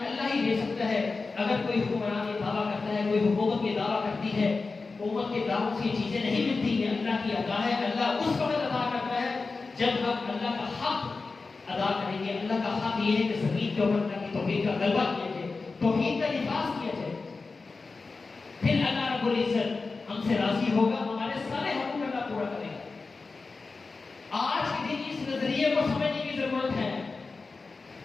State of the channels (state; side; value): quieter; right; 4.1 dB